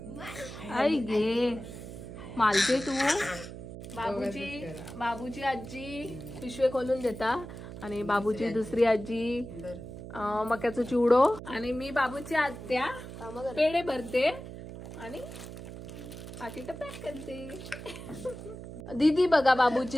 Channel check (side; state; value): right; noise; hum, 11 dB below the sound